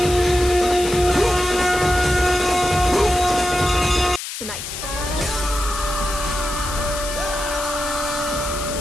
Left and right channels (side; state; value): left; noise; hiss, 8 dB below the sound